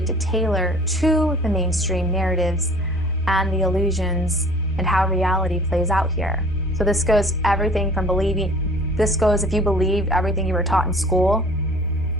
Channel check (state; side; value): normal; both; correlation 0.49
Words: to tailor to the mainstream narratives and the illusions and how reality plays out here. So this goes everything from if you believed everything you were taught in school,